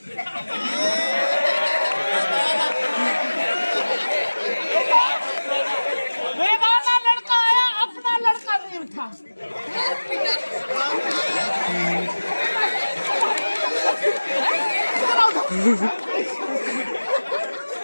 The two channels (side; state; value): both; inverted; correlation -1.00